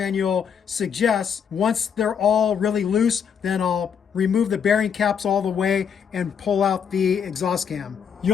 suggests. Once they're all really loose, then I'll remove the bearing caps all the way and pull out the exhaust cam.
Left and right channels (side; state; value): right; quieter; 7.4 dB